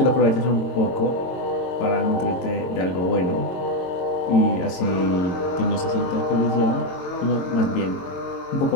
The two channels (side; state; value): right; late; 22 ms